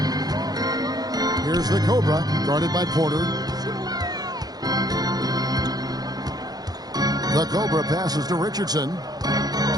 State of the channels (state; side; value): late; left; 0.19 ms